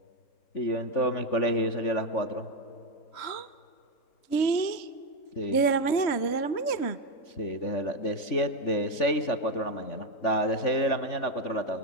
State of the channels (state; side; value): late; right; 3.2 ms